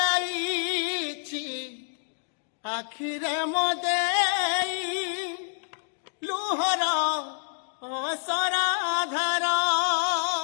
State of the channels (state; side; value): silent; right; digital silence